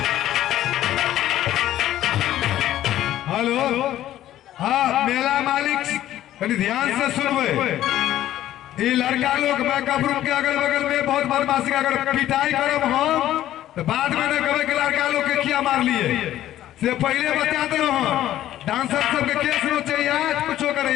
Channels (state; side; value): quieter; right; 13.1 dB